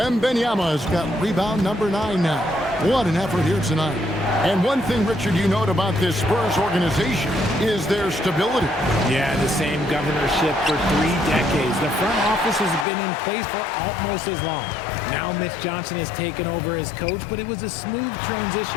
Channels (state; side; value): drops out; right; at 12.9 s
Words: got rebound number 9 now. What an effort here tonight. And one thing, Richard, you note about this Spurs organization is their stability. Yeah, the same governorship for 3 decades. The front office has been in place for almost as long. Now Mitch Johnson has taken over as coach, but it was a smooth